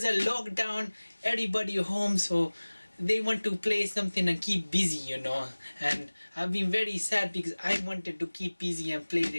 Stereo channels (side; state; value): both; inverted; correlation -1.00